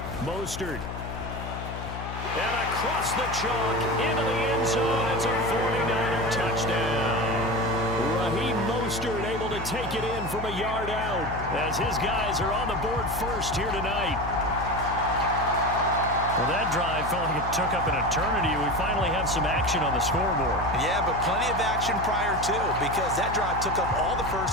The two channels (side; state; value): left; noise; hum, 8 dB below the sound